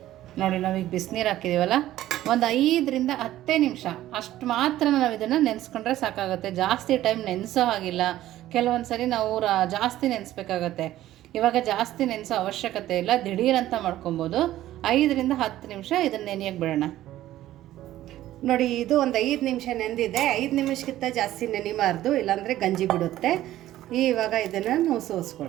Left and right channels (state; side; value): quieter; left; 14.1 dB